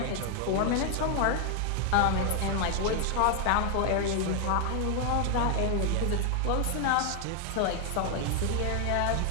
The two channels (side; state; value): both; different; correlation 0.00